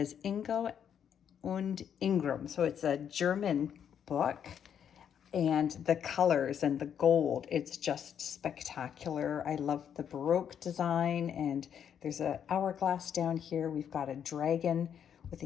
Ingo und Ingram, so it's a German book, and the colors and the gold, it's just spectacular. I love the Baroque design, and there's an hourglass down here. We've got a dragon with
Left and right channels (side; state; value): right; quieter; 8.5 dB